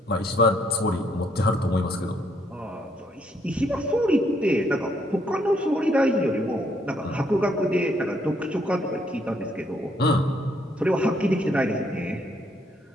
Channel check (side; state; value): both; normal; correlation 0.71